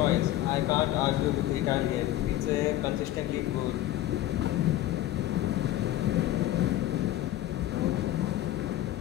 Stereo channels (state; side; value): quieter; right; 14.0 dB